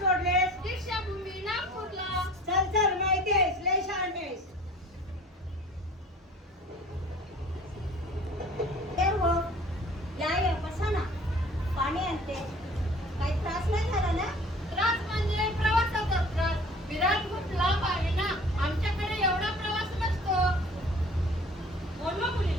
दीक्षाभूमी नागपूरला. चल माहिती आहेस लय शहाणी आहेस. हो या बसा ना. पाणी आणते. काही त्रास नाही झाला ना. त्रास म्हणजे प्रवासाचा त्रास. विरार खूप लांब आहे ना. आमच्याकडे एवढा प्रवास नसतो. बोलवा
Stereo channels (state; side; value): normal; both; correlation 0.47